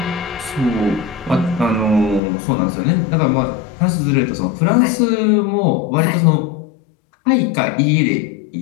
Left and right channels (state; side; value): drops out; right; at 2.2 s